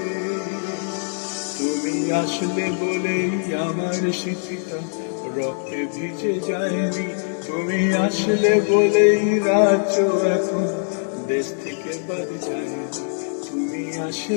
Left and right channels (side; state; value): right; silent; 64 dB below the other